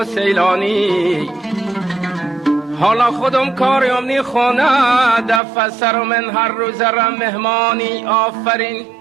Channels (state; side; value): drops out; left; at 5.4 s